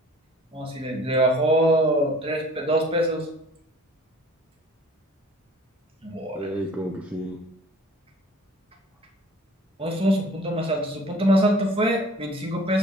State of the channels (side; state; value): both; normal; correlation 0.49